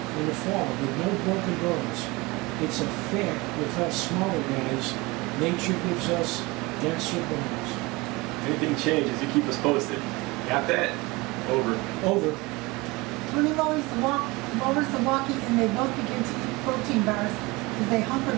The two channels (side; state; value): left; quieter; 23.6 dB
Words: the fall, with no broken bones. It's a fact with us smaller guys, nature gives us denser bones. Anything changes, you keep us posted. Got that? Over. Over. Tony lowers the walkie, and they both begin to eat protein bars as they hunker